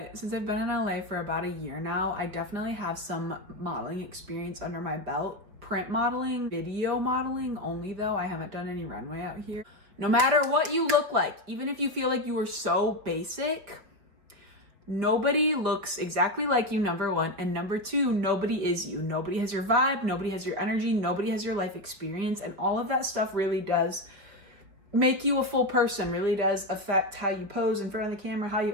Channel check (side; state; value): left; late; 5.2 ms